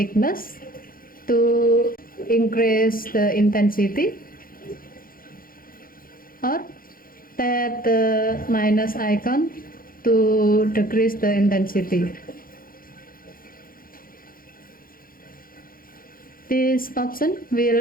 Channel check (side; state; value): right; late; 0.42 ms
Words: to increase the intensity, or tap the minus icon to decrease the intensity. This option